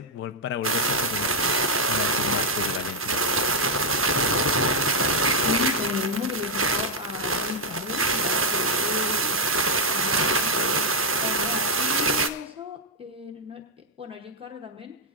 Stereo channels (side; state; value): both; normal; correlation -0.02